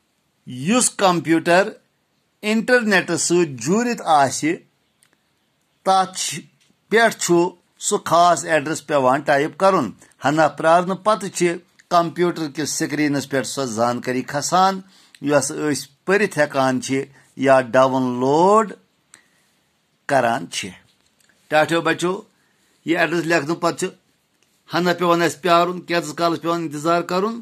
یُس کمپیوٗٹر انٹرنیٹس سۭتۍ جوٗرِتھ آسہِ تتھ پٮ۪ٹھ چھُ سُہ خاص ایڈرس پیوان ٹایپ کرُن ہنا پرارنہٕ پتہٕ چھِ کمپیوٗٹر کِس سکریٖنس پٮ۪ٹھ سۄ زانکٲری کھسان یۄس أسۍ پٔرِتھ ہٮ۪کان چھِ یا ڈاوُن لوڈ کران چھِ ٹاٹھیو بچو یہِ ایڈرس لیکھنہٕ پتہٕ چھِ ہنا پیوان اسہِ پیارُن کینٛژس کالس پیوان انتظار کرُن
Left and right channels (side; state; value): both; identical; correlation 1.00